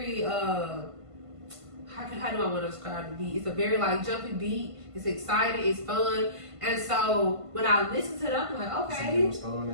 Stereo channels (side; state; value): left; late; 1.5 ms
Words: how do I want to describe the beat? It's a very like jumpy beat. It's exciting. It's fun. And so when I listen to it, I'm like, okay,